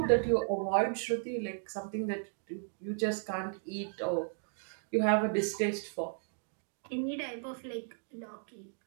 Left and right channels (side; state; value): left; silent; digital silence